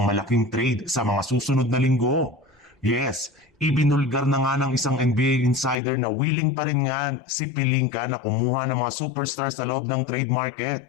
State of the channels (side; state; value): right; drops out; at 5.8 s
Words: malaking trade sa mga susunod na linggo. Yes, ibinulgar na nga ng isang NBA insider na willing pa rin nga si Pelinka na kumuha ng mga superstars sa loob ng trade market